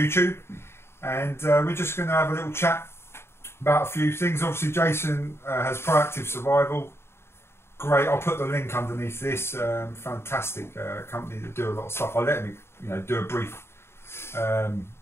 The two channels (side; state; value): right; late; 0.12 ms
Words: and we're just going to have a little chat about a few things. Obviously, Jason has Proactive Survival. Great, I'll put the link underneath this. Fantastic company that do a lot of stuff. I'll let him, do a brief